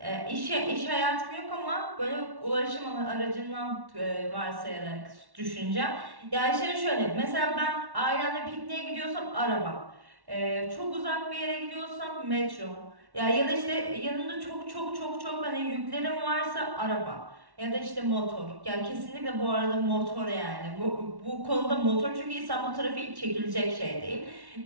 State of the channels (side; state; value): left; late; 1.1 ms